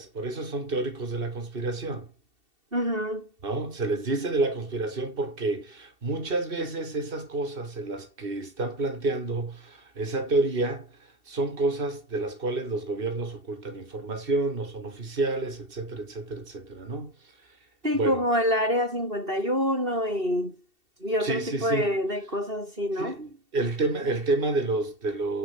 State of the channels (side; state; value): left; late; 2.7 ms